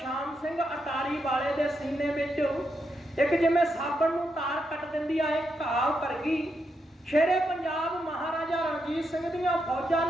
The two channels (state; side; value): normal; both; correlation 0.82